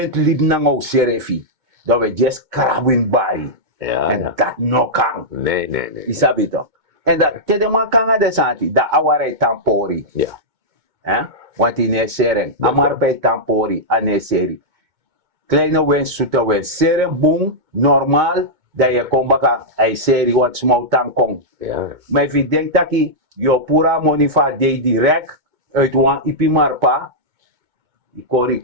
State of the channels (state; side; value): late; left; 2.2 ms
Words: lib na ngou serefi. Dat we just krabwin bari. Ja, En ja. dat no kan. Nee, nee, nee. Isabi toch? En dat te man kan de santi. Dat aware tampori. Ja. Want in een sering. Amar bij tampori. Ane seri. Kleine wens, zoete wens. Seren boom. Normaal. Dat je komt baka. Ay seri wat smau tankong. Ja. Maar if je denkt dat je pura money va de direct uit wan ipi marpa, die kori